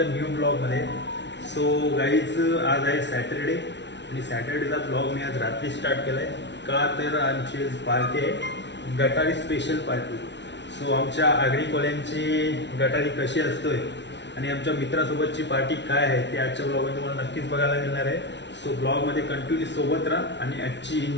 न्यू ब्लॉगमध्ये. सो गाईज आज आहे सॅटरडे आणि सॅटरडेचा ब्लॉग मी आज रात्री स्टार्ट केला आहे. का तर आमची पार्टी आहे, गटारी स्पेशल पार्टी. सो आमच्या आगरी कोल्यांची गटारी कशी असतोय आणि आमच्या मित्रासोबतची पार्टी काय आहे ते आजच्या ब्लॉगमध्ये तुम्हाला नक्कीच बघायला मिळणार आहे. सो ब्लॉगमध्ये कंटिन्यू सोबत राहा आणि आजची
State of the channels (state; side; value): late; right; 0.51 ms